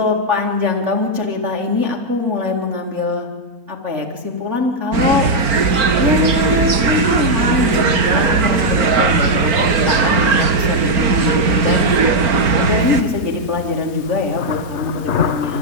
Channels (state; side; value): late; left; 4.4 ms